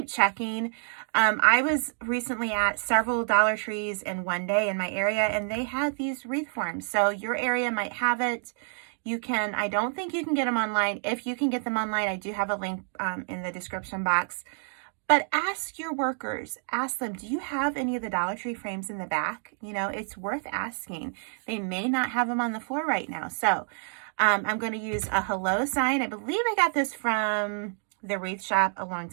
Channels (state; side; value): silent; left; 59 dB below the other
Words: checking. I was recently at several Dollar Trees in one day in my area, and they had these wreath forms. So your area might have it. I don't think you can get them online. If you can get them online, I do have a link in the description box. But ask your workers, ask them, do you have any of the Dollar Tree frames in the back? You know, it's worth asking. They may not have them on the floor right now. So I'm going to use a hello sign. I believe I got this from the wreath shop a long